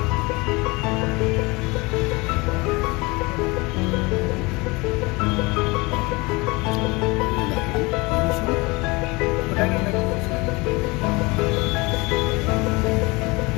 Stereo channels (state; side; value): quieter; right; 24.9 dB